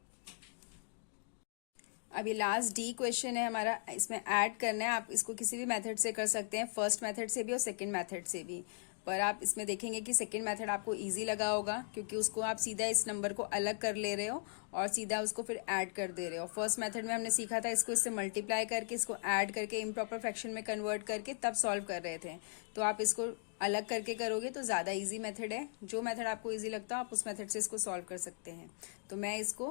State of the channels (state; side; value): silent; right; digital silence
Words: अब ये लास्ट डी क्वेश्चन है हमारा, इसमें ऐड करना है। आप इसको किसी भी मेथड से कर सकते हैं, फर्स्ट मेथड से भी और सेकंड मेथड से भी। पर आप इसमें देखेंगे कि सेकंड मेथड आपको इजी लगा होगा, क्योंकि उसको आप सीधा इस नंबर को अलग कर ले रहे हो और सीधा उसको फिर ऐड कर दे रहे हो। फर्स्ट मेथड में हमने सीखा था इसको इससे मल्टीप्लाई करके, इसको ऐड करके इम्प्रॉपर फ्रैक्शन में कन्वर्ट करके तब सॉल्व कर रहे थे। तो आप इसको अलग करके करोगे तो ज्यादा इजी मेथड है। जो मेथड आपको इजी लगता है आप उस मेथड से इसको सॉल्व कर सकते हैं। तो मैं